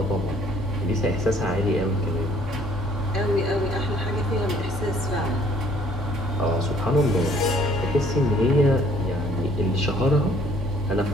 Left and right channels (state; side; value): normal; both; correlation 0.60